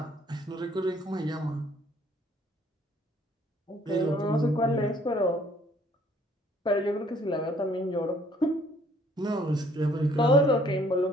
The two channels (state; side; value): normal; both; correlation 0.61